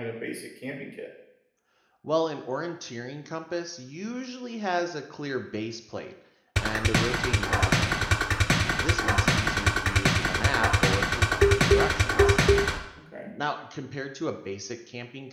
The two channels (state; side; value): identical; both; correlation 1.00